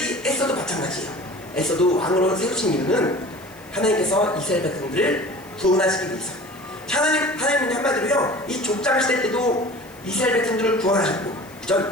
에스더도 마찬가지예요. 에스더도 왕으로 세우신 이유는 하나님께서 이스라엘 백성들을 구원하시기 위해서. 하나님은 한마디로요, 이 족장 시대 때도 이스라엘 백성들을 구원하셨고,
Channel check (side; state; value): left; noise; hiss, 24 dB below the sound